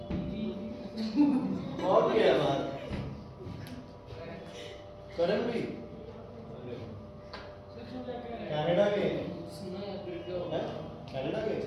और क्या है बात? करण भी कनाडा गए हैं? कनाडा गए?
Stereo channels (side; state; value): both; identical; correlation 1.00